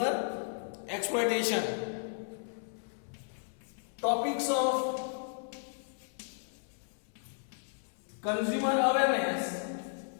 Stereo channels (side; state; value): right; silent; 55 dB below the other